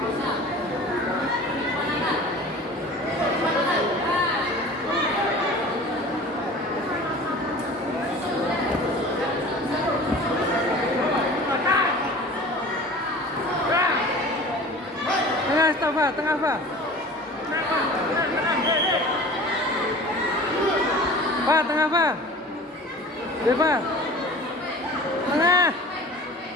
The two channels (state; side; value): normal; both; correlation 0.41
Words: Tengah, stop, Pak. Tengah, Pak. Pak, tengah, Pak. Ya, Pak. Tengah.